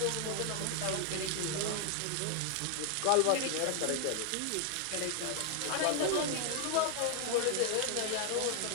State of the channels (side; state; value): both; different; correlation 0.00